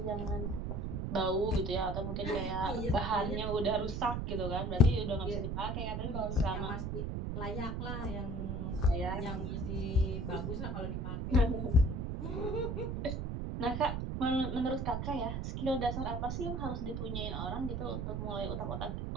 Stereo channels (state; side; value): noise; right; rumble, 2 dB below the sound